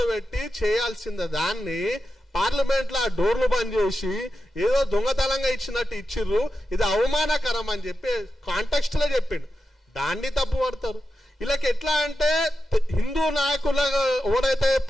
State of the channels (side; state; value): both; normal; correlation 0.90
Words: చేయాల్సిన దాన్ని పార్లమెంట్లో డోర్లు బంద్ చేసి ఏదో దొంగతనంగా ఇచ్చినట్టు ఇచ్చిర్రు, ఇది అవమానకరం అని చెప్పి కాంటెక్స్ట్ లో చెప్పిండు. దాన్ని తప్పు పడతారు. వీళ్ళకి ఎట్లా అంటే హిందూ నాయకుల ఎవరైతే